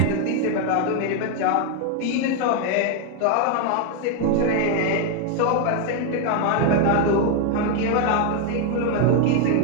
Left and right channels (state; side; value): different; both; correlation 0.01